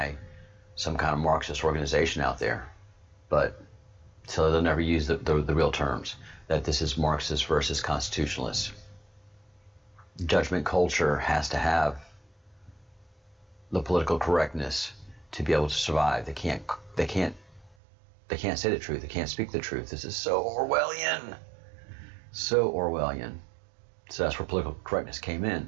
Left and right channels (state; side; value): drops out; left; at 17.8 s